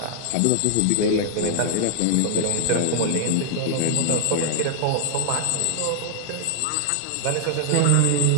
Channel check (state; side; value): different; both; correlation 0.00